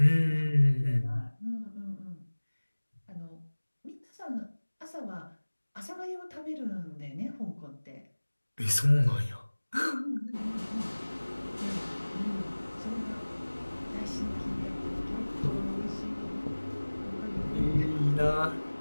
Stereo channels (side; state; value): both; inverted; correlation -1.00